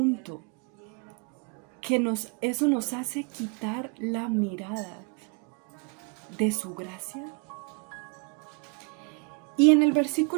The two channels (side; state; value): left; quieter; 33.8 dB